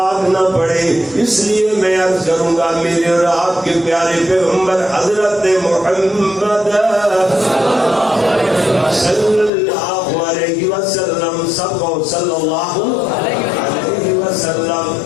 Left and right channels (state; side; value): drops out; right; at 9.5 s